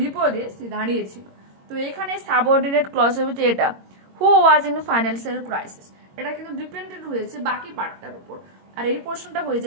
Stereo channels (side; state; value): left; late; 22 ms